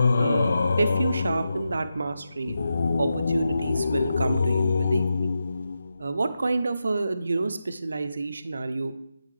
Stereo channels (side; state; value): both; inverted; correlation -0.88